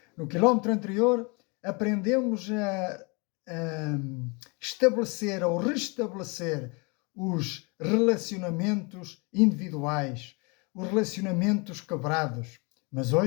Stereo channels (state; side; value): quieter; right; 30.4 dB